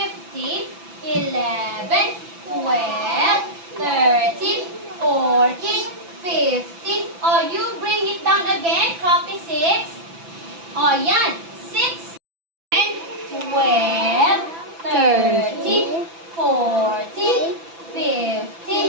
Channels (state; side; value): late; left; 6.0 ms